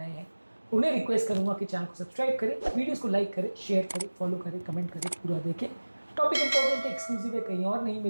हैं उन्हें रिक्वेस्ट करूंगा कि चैनल को सब्सक्राइब करें, वीडियोस को लाइक करें, शेयर करें, फॉलो करें, कमेंट करें, पूरा देखें। टॉपिक इंपॉर्टेंट है, एक्सक्लूसिव है, कहीं और नहीं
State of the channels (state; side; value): inverted; both; correlation -1.00